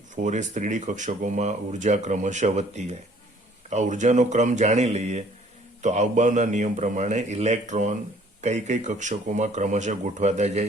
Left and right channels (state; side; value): normal; both; correlation 0.57